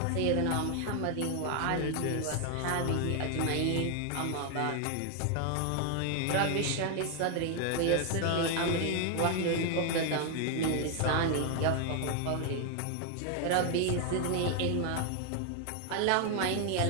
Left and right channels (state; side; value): different; both; correlation 0.01